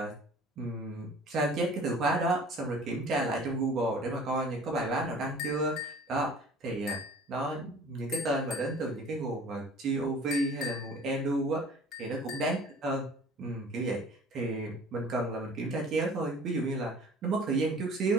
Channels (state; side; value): normal; both; correlation 0.48